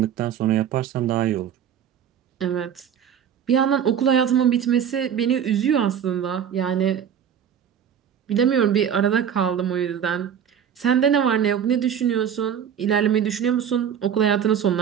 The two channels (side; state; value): left; quieter; 8.6 dB